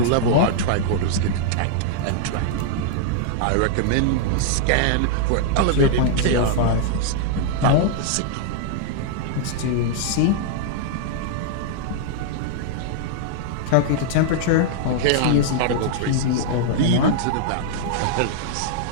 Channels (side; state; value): both; different; correlation -0.01